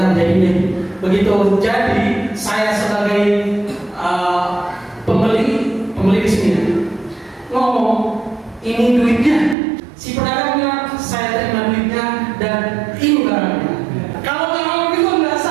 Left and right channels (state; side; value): drops out; left; at 9.6 s